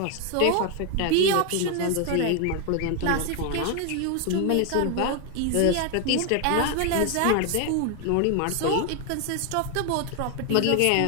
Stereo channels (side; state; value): both; different; correlation 0.01